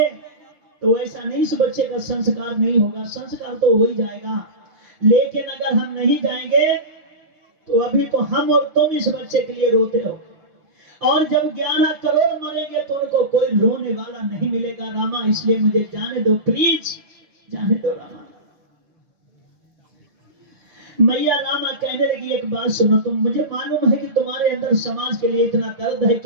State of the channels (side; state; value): left; late; 5.8 ms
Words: तो ऐसा नहीं, इस बच्चे का संस्कार नहीं होगा, संस्कार तो हो ही जाएगा, लेकिन अगर हम नहीं जाएंगे तो अभी तो हम और तुम इस बच्चे के लिए रोते हो, और जब 11 करोड़ मरेंगे तो उनको कोई रोने वाला नहीं मिलेगा रामा, इसलिए मुझे जाने दो, प्लीज जाने दो रामा। मैया रामा कहने लगी एक बात सुनो, तुम, मुझे मालूम है कि तुम्हारे अंदर समाज के लिए इतना दर्द है